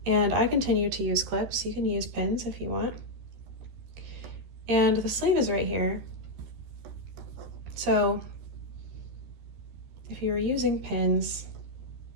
and I continue to use clips. You can use pins if you want. And the sleeve is right here. So if you were using pins,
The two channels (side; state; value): left; late; 13 ms